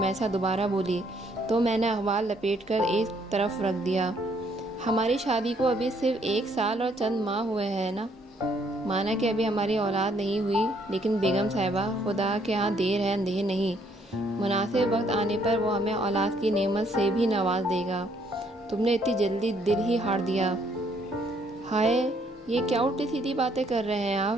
دوبارہ بولی تو میں نے اخبار لپیٹ کر ایک طرف رکھ دیا۔ ہماری شادی کو ابھی صرف 1 سال اور چند ماہ ہوئے ہیں نا؟ مانا کہ ابھی ہماری اولاد نہیں ہوئی، لیکن بیگم صاحبہ، خدا کے ہاں دیر ہے اندھیر نہیں، مناسب وقت آنے پر وہ ہمیں اولاد کی نعمت سے بھی نواز دے گا۔ تم نے اتنی جلدی دل ہی ہار دیا؟ ہائے، یہ کیا الٹی سیدھی باتیں کر رہے ہیں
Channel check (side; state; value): both; normal; correlation 0.67